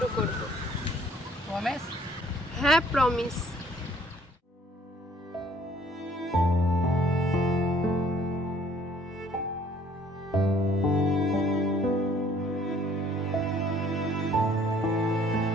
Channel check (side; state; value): both; normal; correlation 0.59